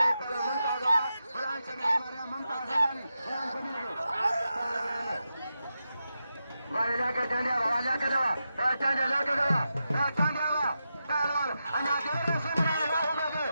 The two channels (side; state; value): both; inverted; correlation -0.89